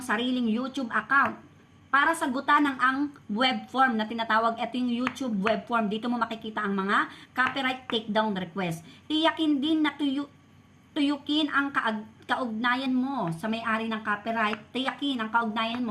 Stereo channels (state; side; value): identical; both; correlation 1.00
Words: sariling YouTube account para sagutan ng ang web form na tinatawag. Ito yung YouTube web form. Dito mo makikita ang mga copyright takedown request. Tiyakin din na tuyukin ang kaugnayan mo sa may-ari ng copyright, tiyakin ang kaugnayan